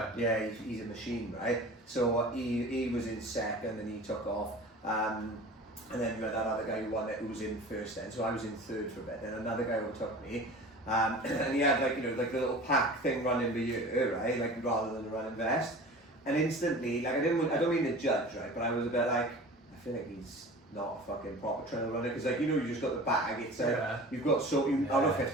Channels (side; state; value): both; normal; correlation 0.39